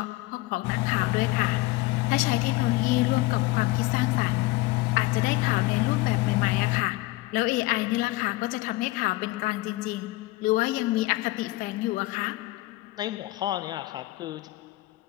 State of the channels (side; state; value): right; quieter; 19.8 dB